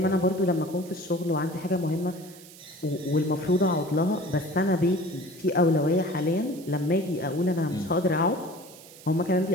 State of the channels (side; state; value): right; noise; hiss, 20 dB below the sound